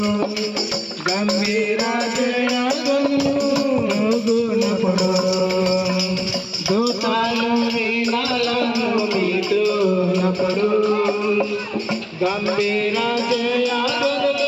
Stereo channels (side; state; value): both; identical; correlation 1.00